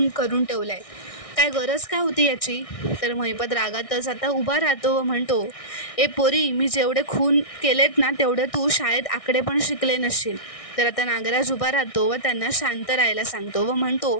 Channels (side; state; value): right; late; 1.6 ms